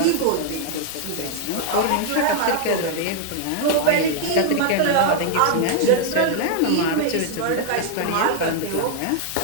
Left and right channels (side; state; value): both; different; correlation 0.00